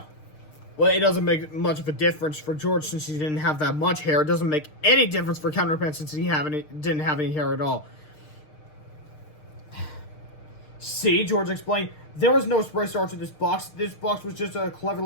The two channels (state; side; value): late; right; 6.6 ms